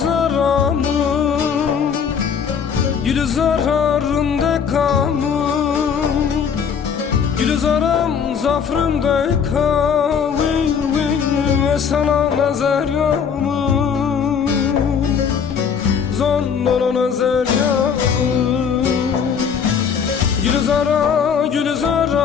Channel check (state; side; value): quieter; right; 6.9 dB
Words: Gülzararında kamın Gülzaram zafrında kavil ve sana nazar yağmın Zonnana nazar yağmın Gülzaramın